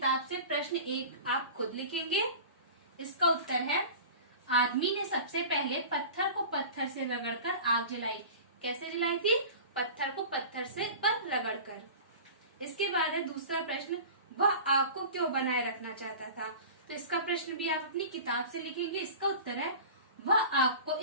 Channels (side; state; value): both; inverted; correlation -0.37